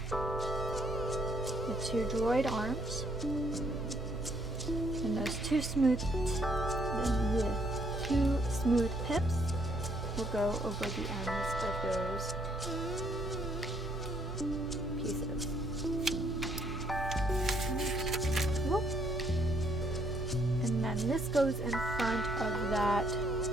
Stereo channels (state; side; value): normal; both; correlation 0.69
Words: the 2 droid arms. And those 2 smooth pips will go over the ends of those pieces. And then this goes in front of that